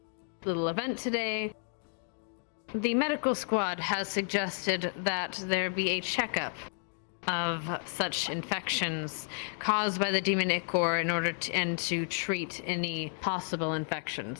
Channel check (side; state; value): right; silent; digital silence